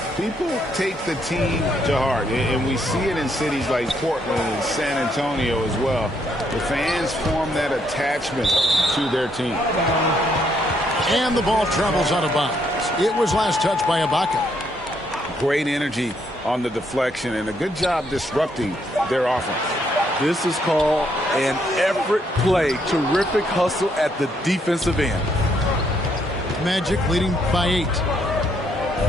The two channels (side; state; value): both; normal; correlation 0.72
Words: people take the team to heart. And we see it in cities like Portland and San Antonio as well. The fans form that attachment to their team. And the ball travels out of bounds. It was last touched by Ibaka. Great energy on the deflection and a good job disrupting their offense. This is called an effort play. Terrific hustle at the defensive end. Magic leading by 8.